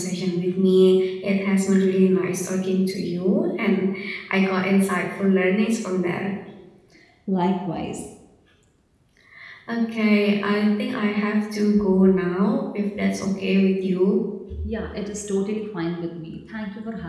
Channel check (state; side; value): identical; both; correlation 1.00